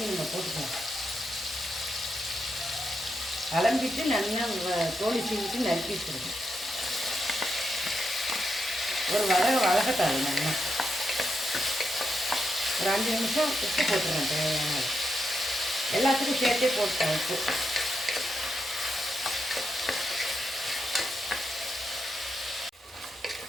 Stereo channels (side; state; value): both; normal; correlation 0.84